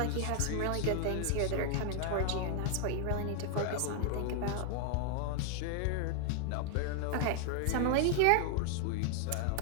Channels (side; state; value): both; different; correlation 0.00